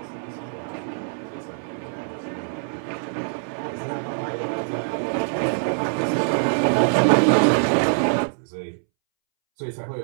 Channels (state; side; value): silent; left; 63 dB below the other